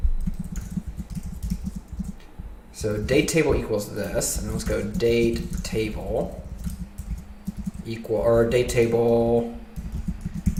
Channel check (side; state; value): both; identical; correlation 1.00